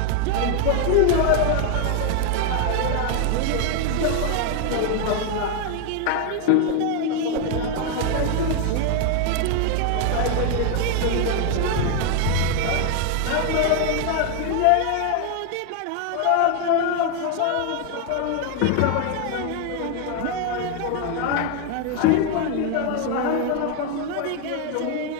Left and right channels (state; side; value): different; both; correlation 0.01